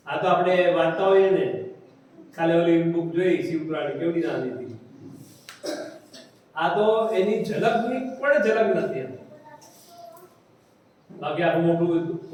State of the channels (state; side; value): identical; both; correlation 1.00